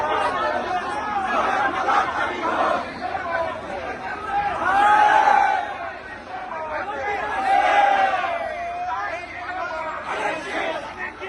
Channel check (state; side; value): identical; both; correlation 1.00